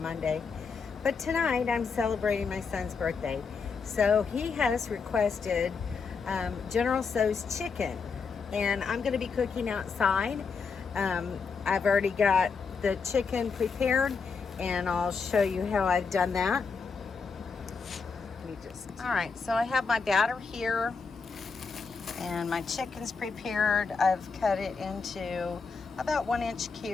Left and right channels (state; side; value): quieter; right; 5.2 dB